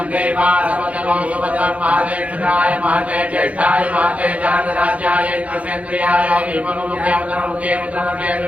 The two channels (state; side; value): late; left; 0.066 ms